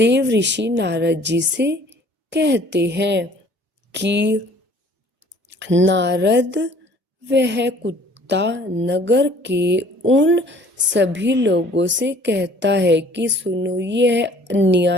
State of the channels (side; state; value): both; normal; correlation 0.54